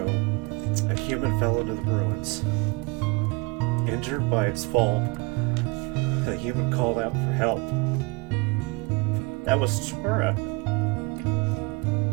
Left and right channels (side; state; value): left; quieter; 27.1 dB